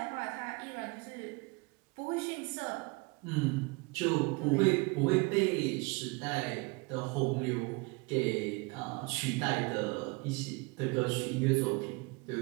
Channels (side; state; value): left; quieter; 27.5 dB